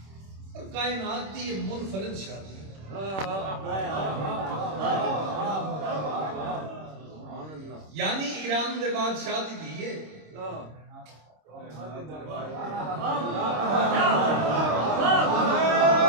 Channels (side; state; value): left; late; 26 ms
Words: اور کائنات دی یہ منفرد شادی یعنی ایران دے بعد شادی دیئے